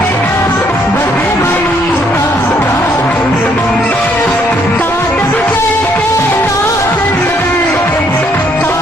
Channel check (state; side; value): normal; both; correlation 0.69